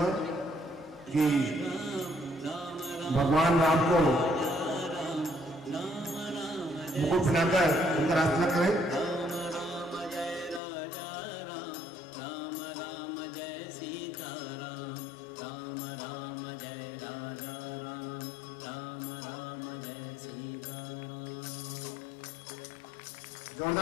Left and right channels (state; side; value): drops out; right; at 10.6 s